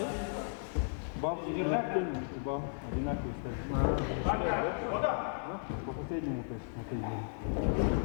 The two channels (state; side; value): silent; right; 55 dB below the other